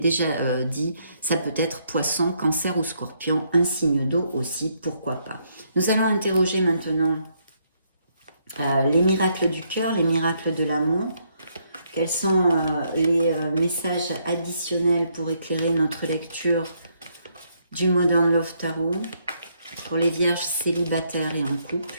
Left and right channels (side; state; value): both; inverted; correlation -0.74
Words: dit, ça peut être poisson, cancer ou scorpion, un signe d'eau aussi, pourquoi pas. Nous allons interroger maintenant les miracles du cœur, les miracles de l'amour. Quels sont les messages additionnels pour éclairer notre lecture du Modern Love Tarot pour les vierges célibataires et en